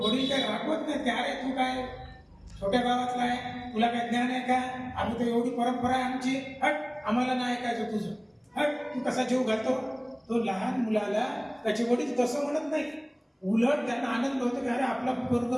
काय रागवत नाही की अरे तू काय छोट्या गावातला आहे, तुला काय ज्ञान आहे का, आम्ही तर एवढी परंपरा आहे आमची, हट आम्हाला नाही ऐकायचं तुझं, हट तू कसा जीव घालतो. तो लहान मुलाला त्याचे वडील तसं म्हणत नाही, उलट त्यांना आनंद होतो की अरे आपला पोरग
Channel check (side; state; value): both; identical; correlation 1.00